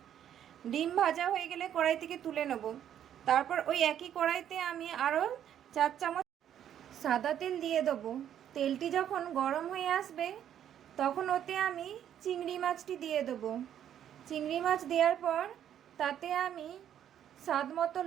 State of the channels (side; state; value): left; quieter; 10.1 dB